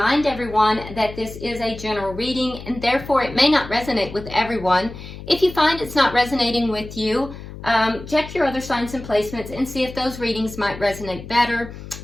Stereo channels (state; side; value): noise; left; hum, 13 dB below the sound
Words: everyone that this is a general reading and therefore it may not resonate with everyone. If you find it's not resonating with you, check your other signs and placements and see if those readings might resonate better.